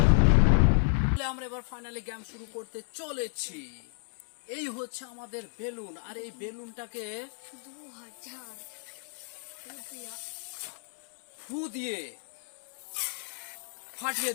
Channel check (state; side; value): silent; right; digital silence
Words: আমরা এবার ফাইনালি গেম শুরু করতে চলেছি। এই হচ্ছে আমাদের বেলুন আর এই বেলুনটাকে 2000 ফু দিয়ে ফাটিয়ে